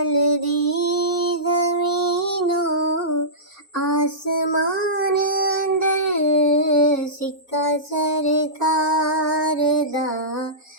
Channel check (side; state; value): both; normal; correlation -0.18